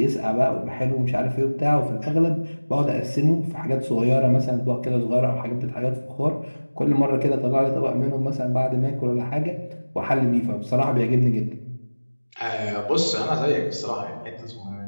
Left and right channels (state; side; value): inverted; both; correlation -1.00